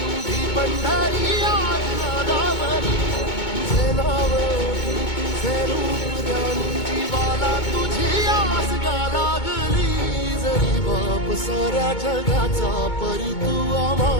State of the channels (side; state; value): right; late; 2.2 ms